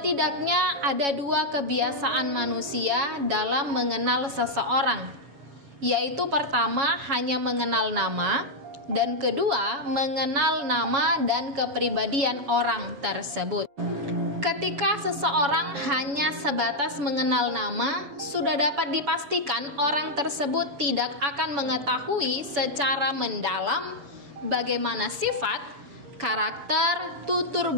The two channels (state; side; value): late; left; 7.1 ms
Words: ada dua kebiasaan manusia dalam mengenal seseorang, yaitu pertama hanya mengenal nama, dan kedua mengenal nama dan kepribadian orang tersebut. Ketika seseorang hanya sebatas mengenal nama, sudah dapat dipastikan orang tersebut tidak akan mengetahui secara mendalam bagaimana sifat, karakter, tutur